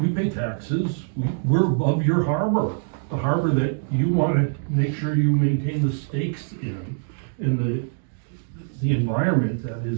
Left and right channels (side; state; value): left; silent; digital silence